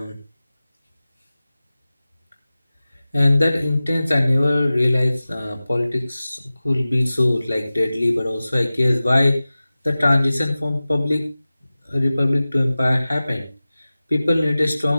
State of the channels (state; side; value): inverted; both; correlation -0.97